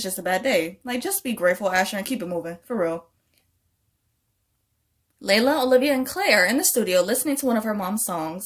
just a bad day. Like, just be grateful, Asher, and keep it moving, for real. Layla, Olivia, and Claire are in the studio listening to one of her mom's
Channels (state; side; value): identical; both; correlation 1.00